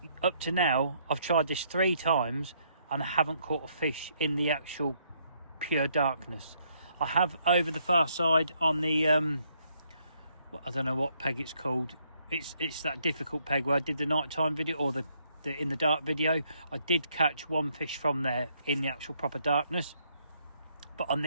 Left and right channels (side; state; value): both; inverted; correlation -0.71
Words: up to now, I've tried this 3 times and I haven't caught a fish in the actual pure darkness. I have over the far side on the, I don't know what peg it's called. It's that difficult peg where I did the nighttime video, or the in the dark video. I did catch 1 fish from there in the actual proper darkness. But on